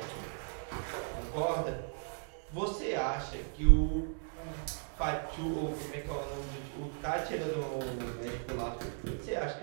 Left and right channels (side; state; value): left; silent; 54 dB below the other